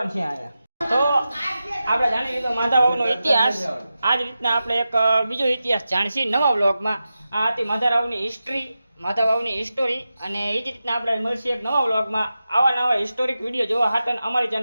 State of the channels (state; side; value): inverted; both; correlation -0.92